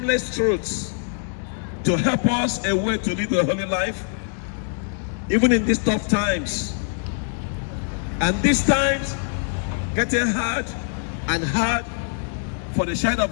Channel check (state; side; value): silent; right; digital silence